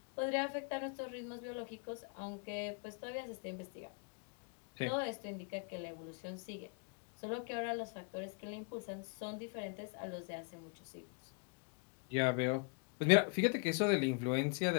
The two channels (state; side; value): quieter; right; 35.3 dB